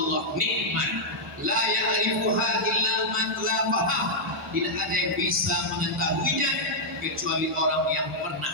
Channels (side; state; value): both; normal; correlation -0.07